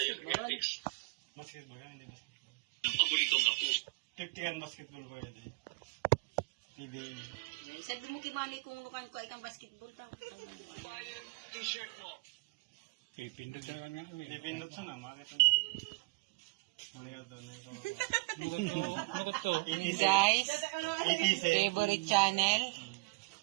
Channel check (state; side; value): quieter; left; 28.8 dB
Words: Basketball yan, hindi basketball. Tiptikan basketball ba yan eh? PBA. Sabi mo kibali kung nukan ko ay kang basketball daw. Pipindot sa na, makita mo. Muli ka doon. Guys, ETC. favorite channel.